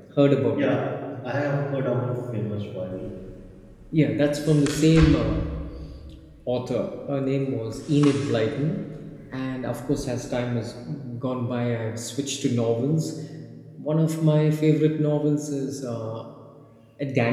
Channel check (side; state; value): both; identical; correlation 1.00